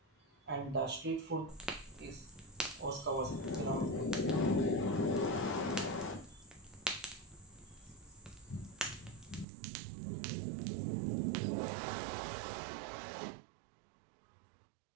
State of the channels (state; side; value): drops out; left; at 9.5 s